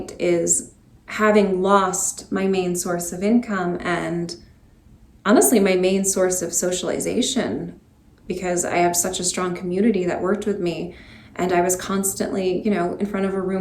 is having lost my main source of income and honestly my main source of socialization, because I have such a strong community that worked with me, and I was constantly, in front of a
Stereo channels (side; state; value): both; identical; correlation 1.00